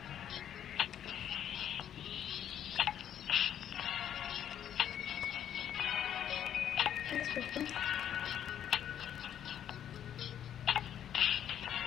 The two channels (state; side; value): quieter; right; 10.0 dB